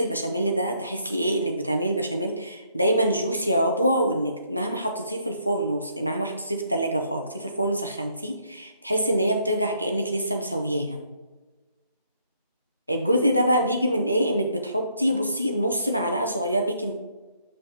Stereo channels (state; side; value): inverted; both; correlation -0.69